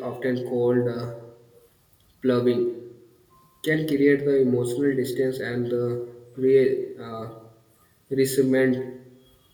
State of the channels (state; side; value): identical; both; correlation 1.00